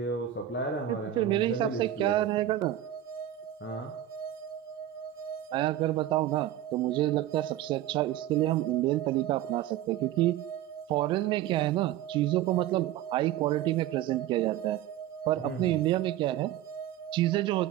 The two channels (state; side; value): quieter; left; 12.5 dB